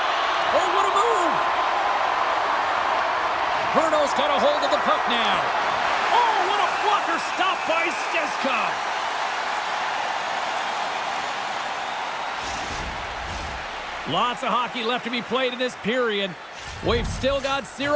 Oh, what a move! Brno's got a hold of the puck now. Oh, what a blocker stop by Steska. Lots of hockey left to be played in this period. We've still got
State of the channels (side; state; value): both; identical; correlation 1.00